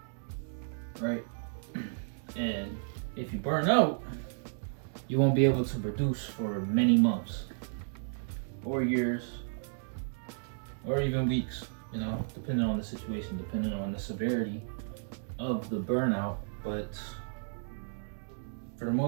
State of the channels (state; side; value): silent; left; digital silence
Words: right? And if you burn out, you won't be able to produce for many months or years or even weeks, you know, depending on the situation, depending on the severity of the burnout. But for the